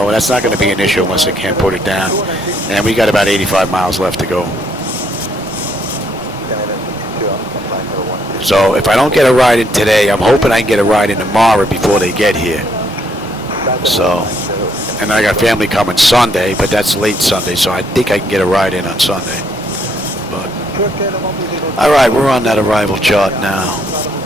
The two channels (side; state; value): both; normal; correlation 0.71